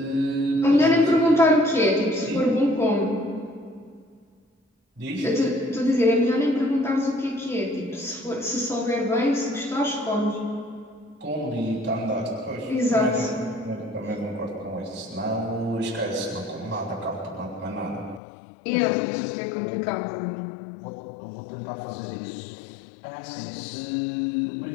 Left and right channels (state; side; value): drops out; right; at 18.2 s